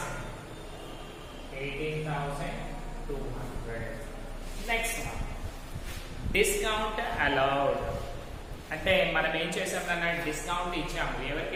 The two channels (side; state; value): both; identical; correlation 1.00